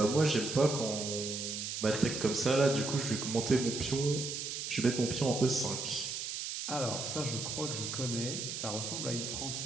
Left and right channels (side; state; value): right; noise; hiss, 4 dB below the sound